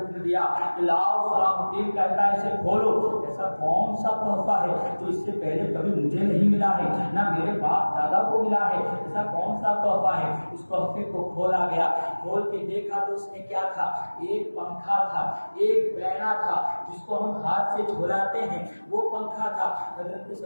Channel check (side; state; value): both; inverted; correlation -1.00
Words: دیا کہ لاؤ، صلاح الدین کہتا ہے اسے کھولو، ایسا کون سا تحفہ ہے جو اس سے پہلے کبھی مجھے نہیں ملا ہے، نہ میرے باپ دادا کو ملا ہے، ایسا کون سا تحفہ ہے؟ اس تحفے کو کھولا گیا، کھول کے دیکھا تو اس میں کیا تھا؟ ایک پنکھا تھا، ایک بینا تھا جس کو ہم ہاتھ سے جھولاتے ہیں، وہ پنکھا تھا۔ حضرت